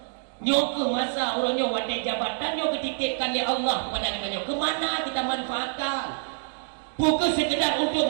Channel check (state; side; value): silent; left; digital silence